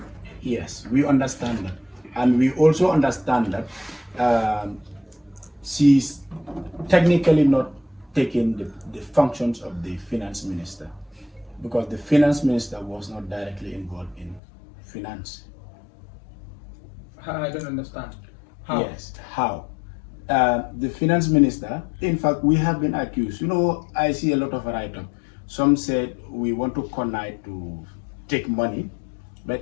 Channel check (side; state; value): right; drops out; at 14.4 s